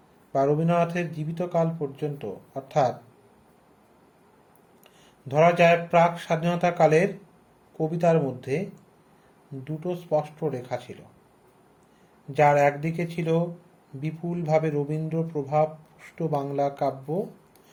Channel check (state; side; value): identical; both; correlation 1.00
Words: রবীন্দ্রনাথের জীবিতকাল পর্যন্ত, অর্থাৎ ধরা যায় প্রাক স্বাধীনতা কালের কবিতার মধ্যে দুটো স্পষ্ট রেখা ছিল, যার একদিকে ছিল বিপুলভাবে রবীন্দ্র প্রভাবপুষ্ট বাংলা কাব্য,